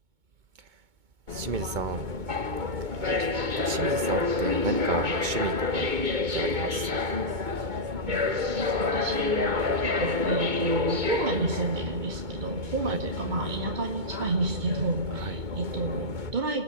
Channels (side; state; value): left; late; 2.2 ms